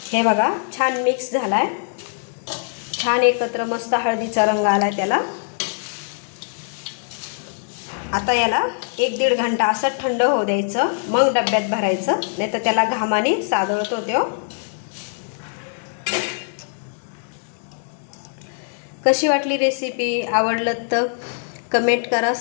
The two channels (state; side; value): silent; right; digital silence